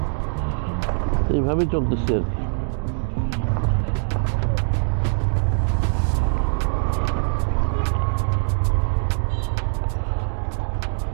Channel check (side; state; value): left; silent; digital silence